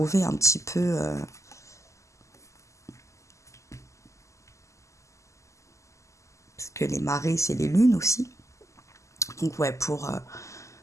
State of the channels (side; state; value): right; late; 0.15 ms